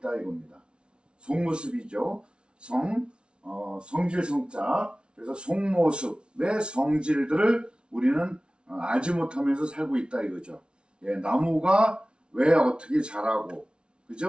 이겁니다. 속모습이죠. 성질 성자. 그래서 속모습의 성질들을 우리는 알지 못하면서 살고 있다 이거죠. 예, 나무가 왜 어떻게 자라고,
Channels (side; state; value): left; late; 0.057 ms